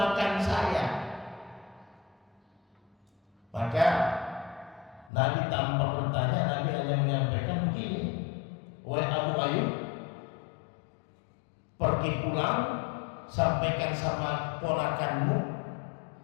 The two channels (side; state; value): right; drops out; at 5.1 s